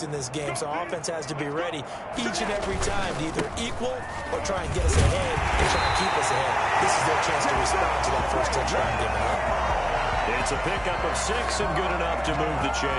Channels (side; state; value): both; identical; correlation 1.00